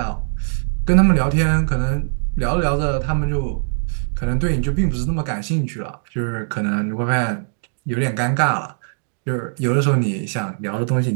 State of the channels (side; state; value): left; silent; digital silence